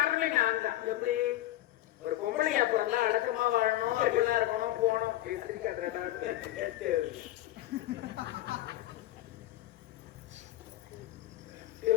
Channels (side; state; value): right; quieter; 14.7 dB